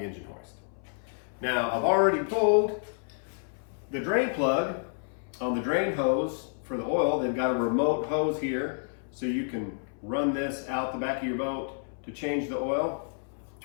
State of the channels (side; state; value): right; silent; 58 dB below the other